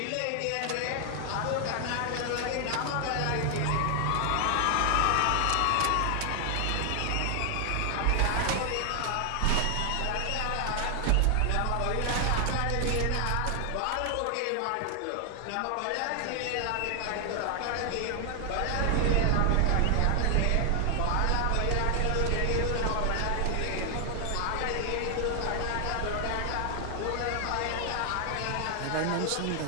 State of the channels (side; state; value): both; different; correlation 0.00